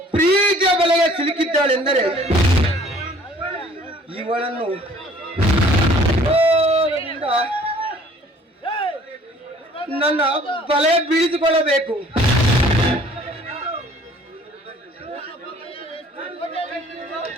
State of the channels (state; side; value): normal; both; correlation 0.54